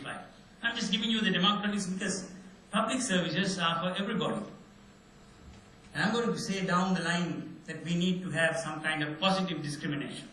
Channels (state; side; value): identical; both; correlation 1.00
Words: I'm just giving you the demographics because public services are for everybody. And I'm going to say down the line that we need to have some kind of positive discrimination.